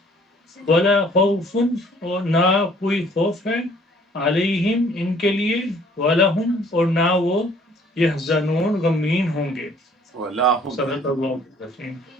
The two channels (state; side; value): normal; both; correlation 0.57